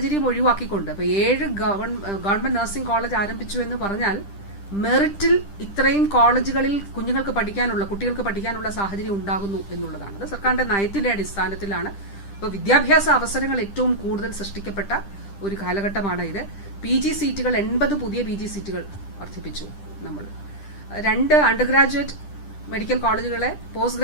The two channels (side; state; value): right; late; 10 ms